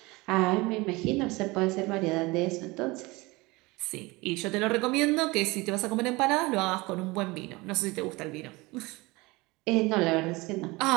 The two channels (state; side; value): quieter; left; 23.1 dB